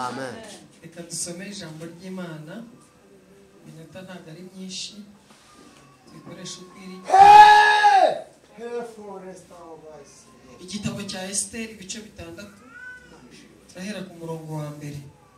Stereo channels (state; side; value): identical; both; correlation 1.00